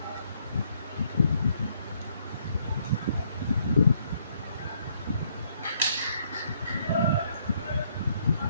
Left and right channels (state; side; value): inverted; both; correlation -0.69